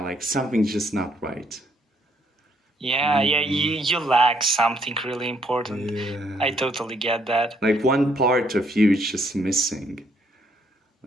like something's just not right. Yeah, you lack something really important. I Yeah. totally get that. Like one part of you is just missing.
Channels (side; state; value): both; normal; correlation 0.70